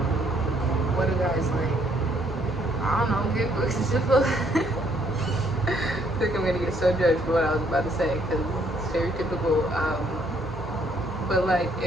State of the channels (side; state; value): both; normal; correlation 0.68